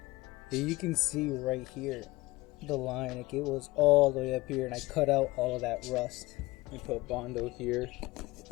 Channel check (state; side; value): quieter; right; 20.6 dB